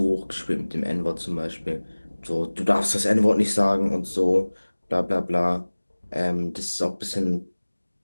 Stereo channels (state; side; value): inverted; both; correlation -1.00